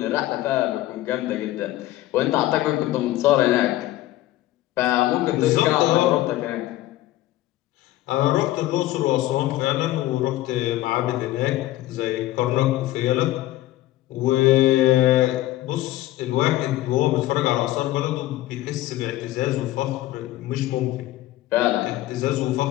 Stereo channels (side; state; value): right; quieter; 15.7 dB